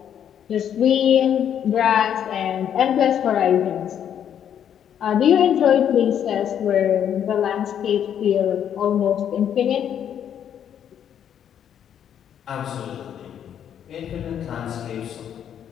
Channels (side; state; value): right; quieter; 9.3 dB